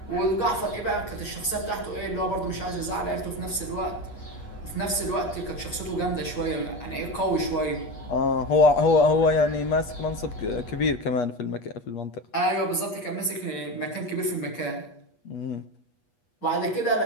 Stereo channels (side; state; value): right; late; 8.3 ms